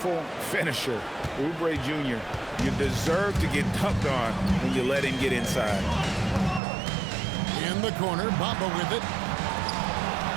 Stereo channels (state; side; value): drops out; left; at 6.6 s